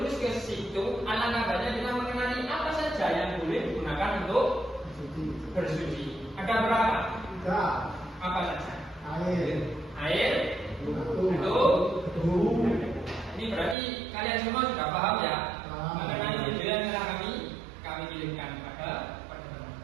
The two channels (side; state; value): left; drops out; at 13.8 s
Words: ke situ, alangkah baiknya kita mengenali apa saja yang boleh digunakan untuk bersuci. Ada berapa? 3. Apa saja? Air. Itu. Ini berarti kalian semua sudah paham ya mengenai video yang telah kami kirimkan kepada teman-teman.